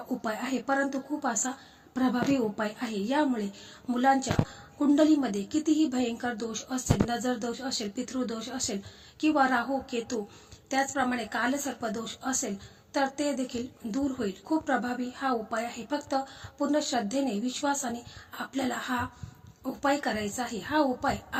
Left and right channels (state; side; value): identical; both; correlation 1.00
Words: उपाय आहे, परंतु खूप असा प्रभावी उपाय आहे. यामुळे मुलांच्या कुंडलीमध्ये कितीही भयंकर दोष असेल, नजर दोष असेल, पितृदोष असेल किंवा राहू केतू, त्याचप्रमाणे कालसर्प दोष असेल तर ते देखील दूर होईल. खूप प्रभावी हा उपाय आहे. फक्त पूर्ण श्रद्धेने, विश्वासाने आपल्याला हा उपाय करायचा आहे. हा उपाय